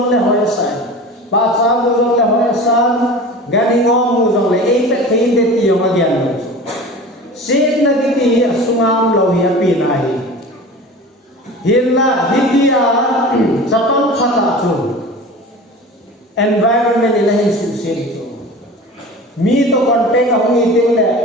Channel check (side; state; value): both; normal; correlation 0.36